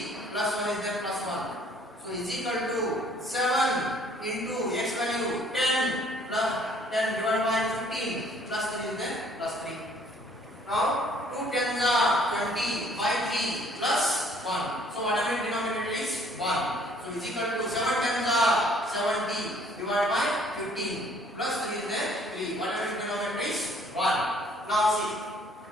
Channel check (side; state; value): both; normal; correlation 0.59